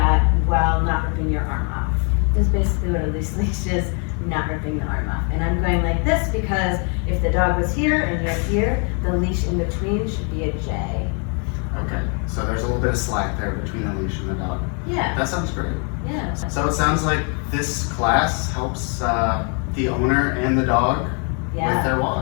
while not ripping your arm off? This is basically what a loose leash is, not ripping the arm off. And I'm going like this because if the dog was here and you're here, the leash in between should be a J. Okay, so there's a little bit of slack there between the leash and the dog. Yeah. That sounds great. Yeah. So it sounds like this class helps the owner and the dog with their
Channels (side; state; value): right; quieter; 37.8 dB